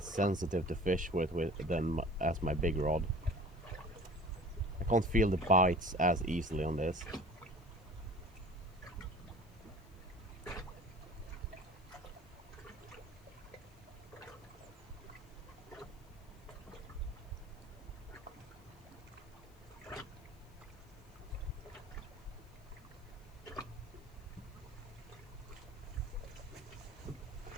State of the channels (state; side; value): noise; left; hiss, 28 dB below the sound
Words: sensitive to fish with as my big rod. I can't feel the bites as easily on this.